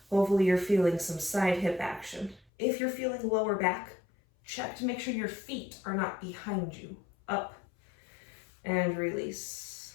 hopefully you're feeling some side hip action. If you're feeling lower back, check to make sure your feet are not behind you. Up and release.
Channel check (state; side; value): drops out; right; at 2.5 s